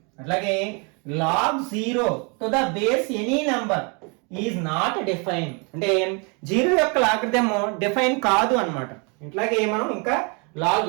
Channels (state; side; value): quieter; left; 33.5 dB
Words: అట్లాగే log 0 to the base any number is not defined, అంటే 0 యొక్క లాగరిథం డిఫైన్ కాదు అన్నమాట. ఇట్లాగే మనం ఇంకా log